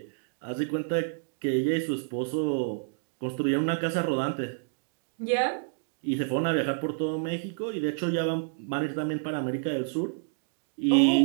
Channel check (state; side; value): silent; left; digital silence